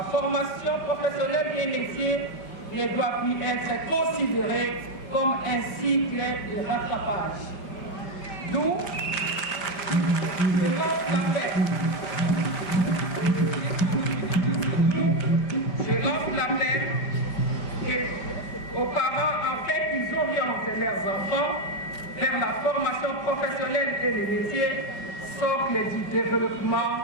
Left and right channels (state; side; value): late; right; 5.1 ms